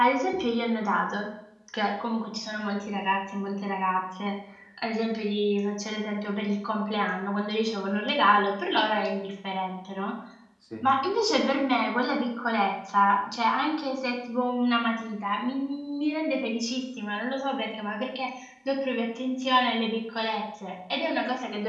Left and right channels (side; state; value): both; identical; correlation 1.00